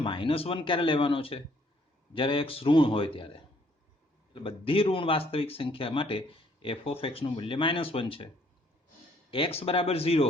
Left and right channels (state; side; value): normal; both; correlation 0.64